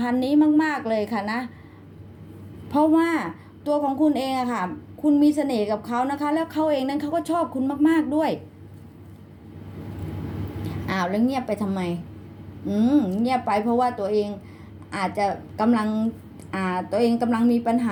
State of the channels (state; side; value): identical; both; correlation 1.00